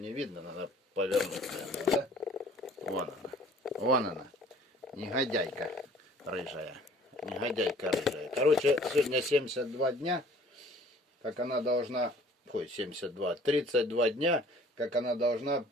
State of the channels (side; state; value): both; normal; correlation 0.53